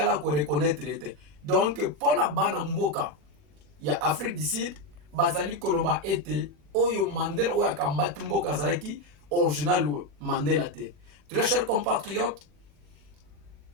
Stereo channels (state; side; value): late; left; 41 ms